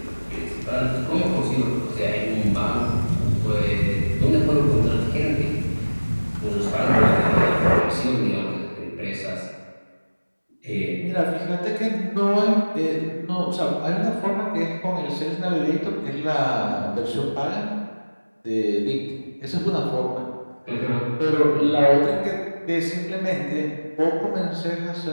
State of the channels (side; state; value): both; inverted; correlation -1.00